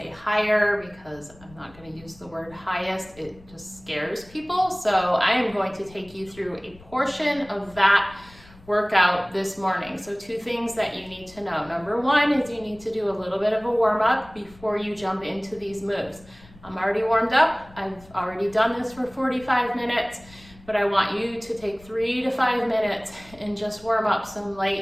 higher because I'm not going to use the word highest. It just scares people. So I am going to take you through a portion of that workout this morning. So two things that you need to know. Number one is you need to do a little bit of a warm up before you jump into these moves. I'm already warmed up. I've already done this for 45 minutes, but I want you to take 3 to 5 minutes and just warm up some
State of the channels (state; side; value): noise; left; rumble, 23 dB below the sound